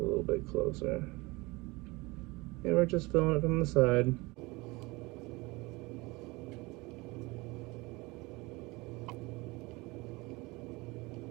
bit closer. And we're just filling it from the side.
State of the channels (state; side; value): quieter; left; 23.7 dB